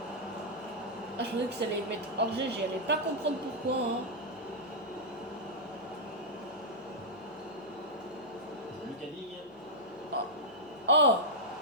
Ah, je pensais que ça allait mettre hors jeu, j'allais pas comprendre pourquoi. Hein. Lucas Digne. Oh,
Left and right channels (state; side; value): noise; left; hum, 29 dB below the sound